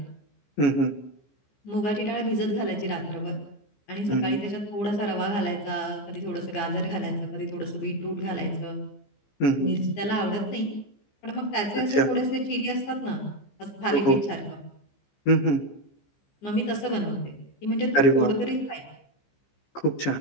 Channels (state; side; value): late; right; 15 ms